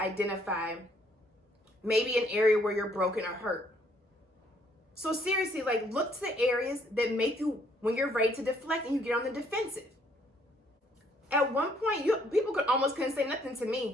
maybe an area where you're broken or hurt. So seriously, like look to the areas that make you, when you're ready to deflect and you get on the defensive. At one point, people couldn't say nothing to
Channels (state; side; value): normal; both; correlation 0.66